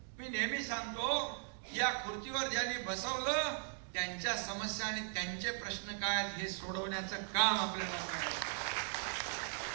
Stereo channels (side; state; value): left; silent; 52 dB below the other